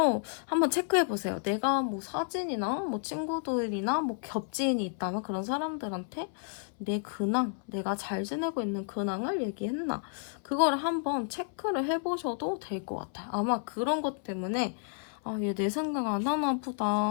한번 체크해보세요. 내가 뭐 사진이나 뭐 친구들이나 뭐 겹지인이 있다면 그런 사람들한테 내 근황, 내가 잘 지내고 있는 근황을 얘기했나 그걸 한번 체크를 해보셔도 될 것 같아요. 아마 그런 것 때문에 얘 내 생각 안 하나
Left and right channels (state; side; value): silent; right; 57 dB below the other